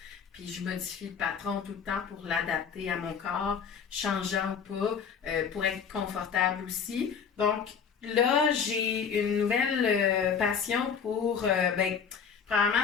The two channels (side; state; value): right; quieter; 6.8 dB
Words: puis je modifie le patron tout le temps pour l'adapter à mon corps, changeant ou pas, pour être confortable aussi. Donc là, j'ai une nouvelle passion pour, probablement